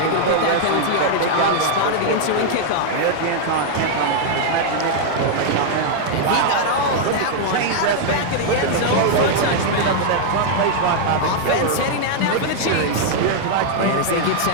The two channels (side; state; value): both; different; correlation 0.00